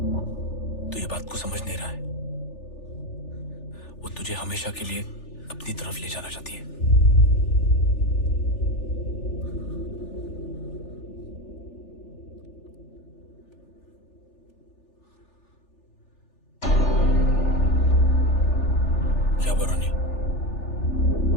तू ये बात को समझ नहीं रहा है। वो तुझे हमेशा के लिए अपनी तरफ ले जाना चाहती है। क्या बरानी?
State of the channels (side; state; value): right; late; 3.4 ms